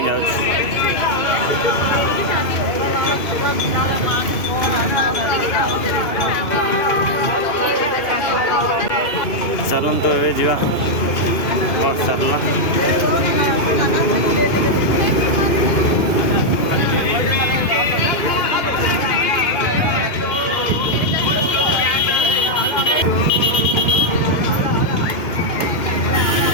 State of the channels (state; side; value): late; right; 2.6 ms